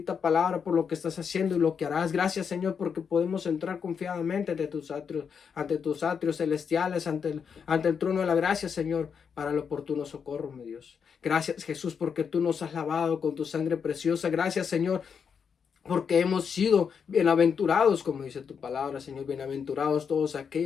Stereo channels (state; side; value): quieter; right; 6.6 dB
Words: palabra, por lo que estás haciendo y lo que harás. Gracias, Señor, porque podemos entrar confiadamente ante tus atrios celestiales, ante el trono de la gracia, Señor, para el oportuno socorro, mi Dios. Gracias, Jesús, porque tú nos has lavado con tu sangre preciosa. Gracias, Señor, porque hemos sido bienaventurados, como dice tu palabra, Señor. Bienaventurados todos